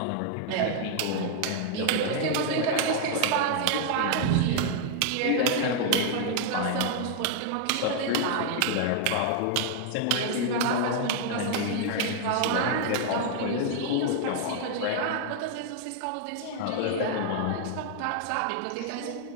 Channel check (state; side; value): different; both; correlation 0.00